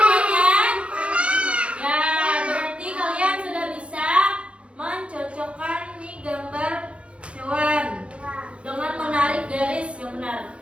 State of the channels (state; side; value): late; left; 0.060 ms